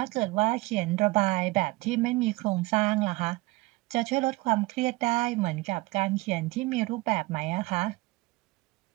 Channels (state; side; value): quieter; left; 22.3 dB